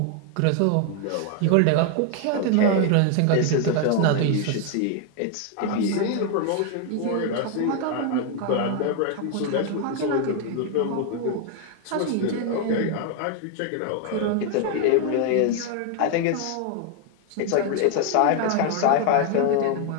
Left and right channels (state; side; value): different; both; correlation 0.00